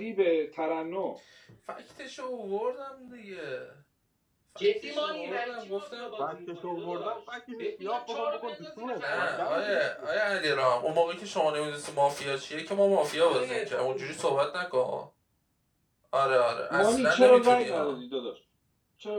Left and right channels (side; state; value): both; identical; correlation 1.00